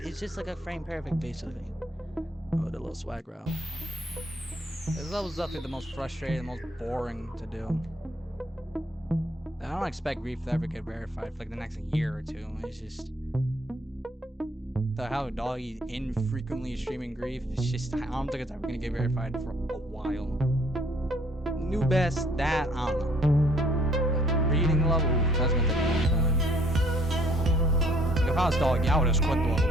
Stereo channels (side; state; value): both; normal; correlation 0.62